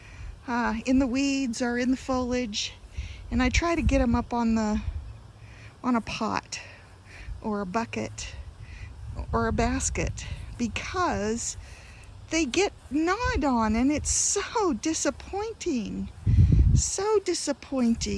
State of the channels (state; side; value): identical; both; correlation 1.00